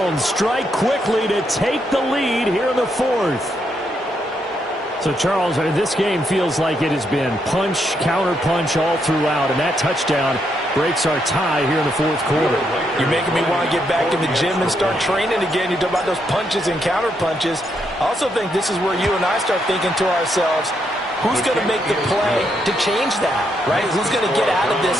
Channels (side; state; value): both; normal; correlation 0.78